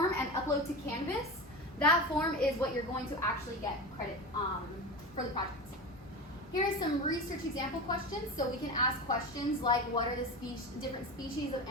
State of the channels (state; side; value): normal; both; correlation 0.25